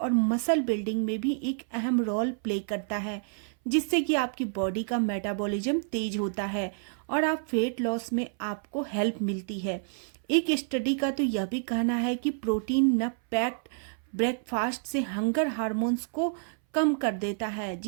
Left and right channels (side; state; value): left; silent; 59 dB below the other